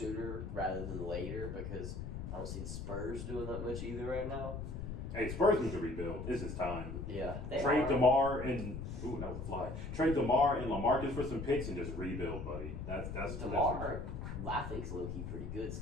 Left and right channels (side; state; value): left; noise; rumble, 6 dB below the sound